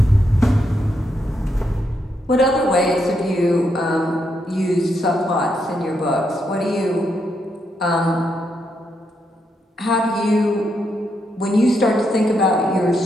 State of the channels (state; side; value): normal; both; correlation 0.80